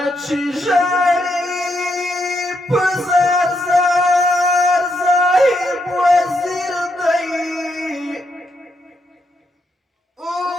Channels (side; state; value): both; normal; correlation 0.79